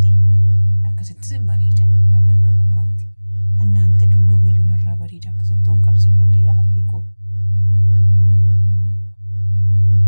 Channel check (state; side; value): inverted; both; correlation -1.00